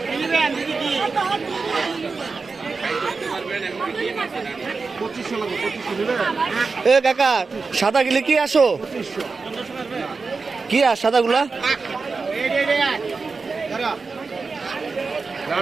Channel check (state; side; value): quieter; left; 4.4 dB